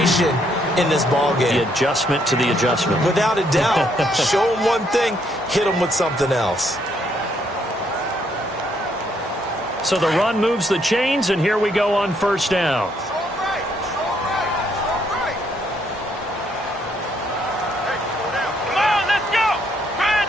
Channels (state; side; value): normal; both; correlation 0.72